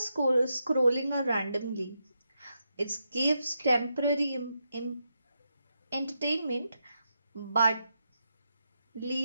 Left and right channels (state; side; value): inverted; both; correlation -0.84